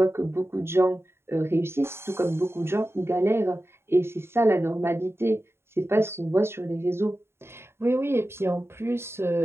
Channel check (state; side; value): late; left; 0.12 ms